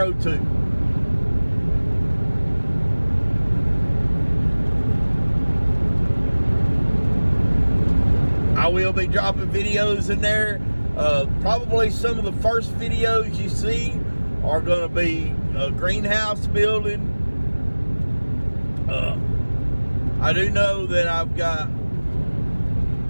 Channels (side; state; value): both; inverted; correlation -1.00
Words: too. I will be dropping videos in there. Probably some of the first videos you see are going to be a greenhouse building. I do know that I've got